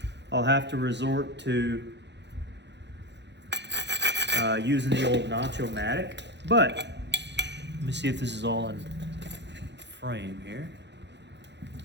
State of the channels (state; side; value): late; left; 0.51 ms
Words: I'll have to resort to using the old Nacho-matic. But let me see if this is all in frame here.